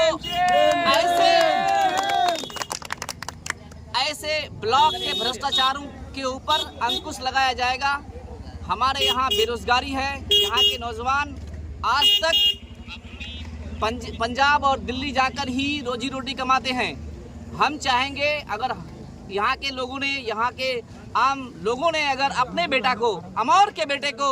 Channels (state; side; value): identical; both; correlation 1.00